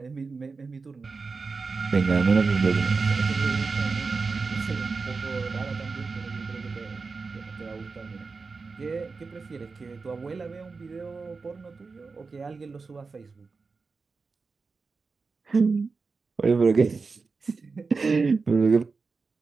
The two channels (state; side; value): quieter; left; 4.4 dB